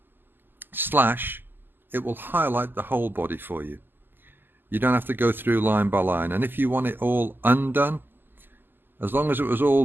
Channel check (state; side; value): late; left; 0.093 ms